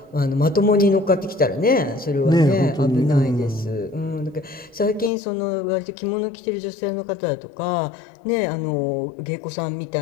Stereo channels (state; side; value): drops out; right; at 5.1 s